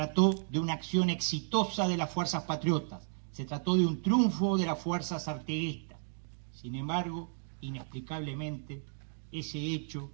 de una acción exitosa de las fuerzas patriotas, se trató de un triunfo de las fuerzas artiguistas. Sin embargo, inexplicablemente, ese hecho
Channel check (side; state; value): left; silent; digital silence